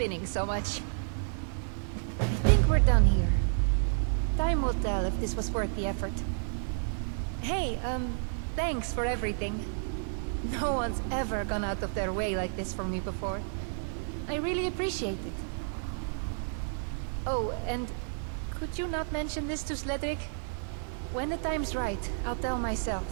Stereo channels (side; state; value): left; silent; digital silence